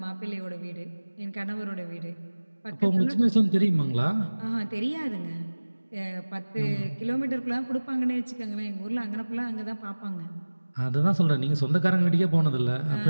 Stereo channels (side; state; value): both; inverted; correlation -1.00